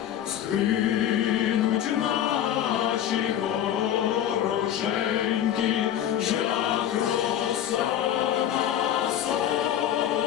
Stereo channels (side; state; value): right; quieter; 10.7 dB